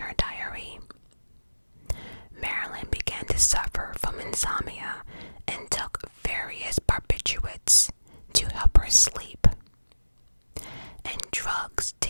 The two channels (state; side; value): inverted; both; correlation -1.00